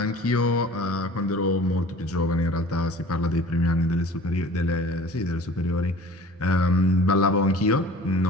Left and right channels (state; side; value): normal; both; correlation 0.45